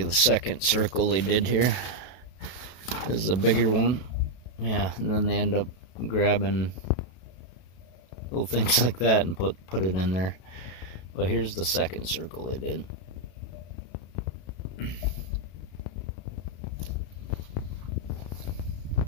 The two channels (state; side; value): late; right; 32 ms